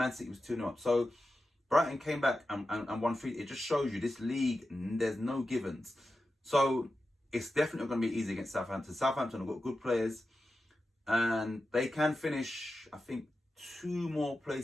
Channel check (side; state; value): both; normal; correlation 0.91